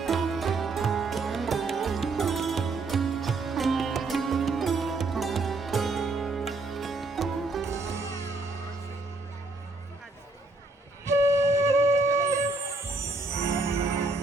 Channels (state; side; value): quieter; left; 3.4 dB